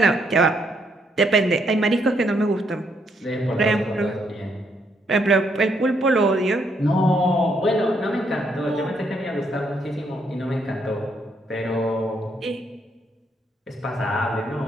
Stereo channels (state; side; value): normal; both; correlation 0.74